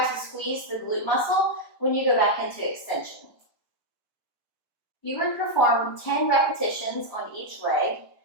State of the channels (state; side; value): late; right; 1.2 ms